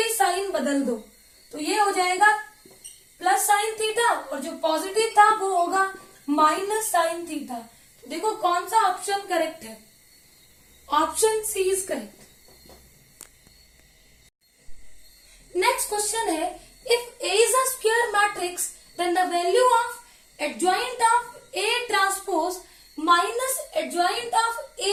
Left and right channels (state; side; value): identical; both; correlation 1.00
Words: साइन बदल दो, तो ये हो जाएगा प्लस साइन थीटा, और जो पॉजिटिव था वो होगा माइनस साइन थीटा। तो देखो कौन सा ऑप्शन करेक्ट है? Option C is correct. Next question है, if A is a square matrix, then the value of adjoint of A transpose minus adjoint of